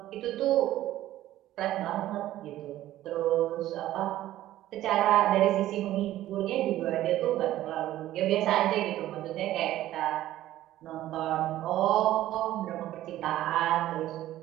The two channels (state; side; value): quieter; left; 14.1 dB